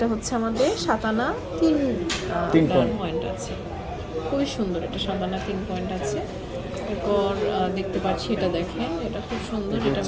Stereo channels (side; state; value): both; identical; correlation 1.00